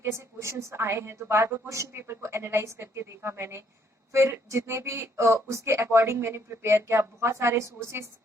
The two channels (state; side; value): normal; both; correlation 0.68